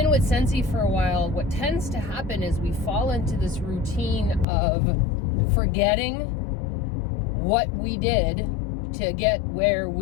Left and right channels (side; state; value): right; drops out; at 4.5 s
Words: with Scentsy for a while, what tends to happen is we fall into this routine of forgetting what we did to get where